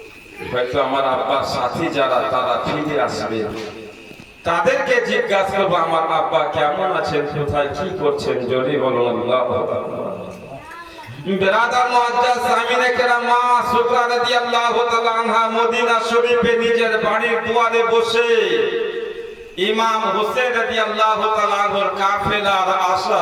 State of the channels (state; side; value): identical; both; correlation 1.00